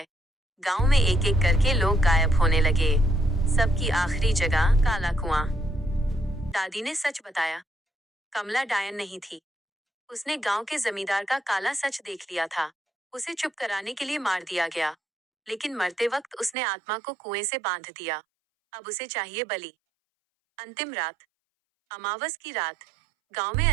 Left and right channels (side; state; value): left; drops out; at 16.6 s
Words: गांव में एक एक करके लोग गायब होने लगे। सबकी आखिरी जगह काला कुआं। दादी ने सच बताया। कमला डायन नहीं थी। उसने गांव के जमींदार का काला सच देख लिया था। उसे चुप कराने के लिए मार दिया गया, लेकिन मरते वक्त उसने आत्मा को कुएं से बांध दिया। अब उसे चाहिए बलि। अंतिम रात। अमावस की रात। गांव में